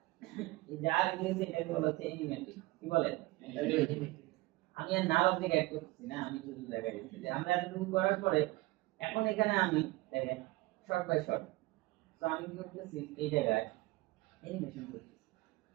এই যা রেডি হয়েছে এটাকে বলা হচ্ছে অ্যানিমেটিং। কি বলে? আমি আর নাম অবজেক্ট অ্যাড করতেছি না, আমি শুধু দেখাই দিচ্ছি যে আমরা এতটুকু করার পরে এখন এখানে আমি দেখেন শর্ট বাই শর্ট। তো আমি কি করতেছি, এই জায়গায় অ্যানিমেশন করতেছি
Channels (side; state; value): left; quieter; 20.8 dB